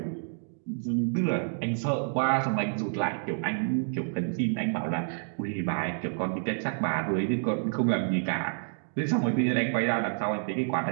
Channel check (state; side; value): silent; left; digital silence